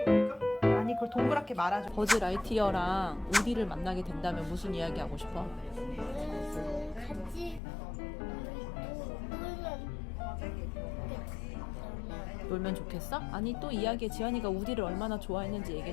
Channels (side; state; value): right; drops out; at 7.6 s